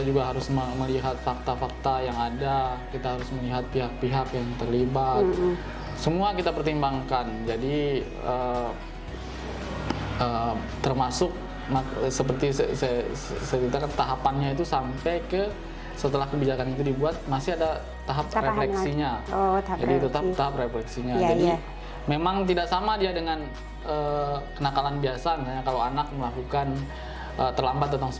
juga harus melihat fakta-fakta yang ada. Kita harus melihat pihak-pihak yang terlibat. Semua kita pertimbangkan. Jadi termasuk seperti saya ceritakan, tahapannya itu sampai ke setelah kebijakan itu dibuat masih ada tahap refleksinya. Jadi tetap tahap refleksinya. Jadi memang tidak sama dia dengan kenakalan biasa. Misalnya kalau anak melakukan terlambat datang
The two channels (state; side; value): identical; both; correlation 1.00